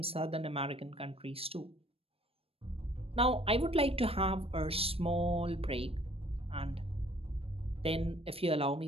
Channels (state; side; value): late; left; 0.28 ms